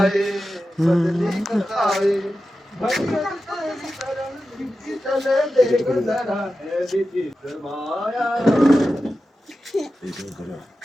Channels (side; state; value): both; normal; correlation 0.92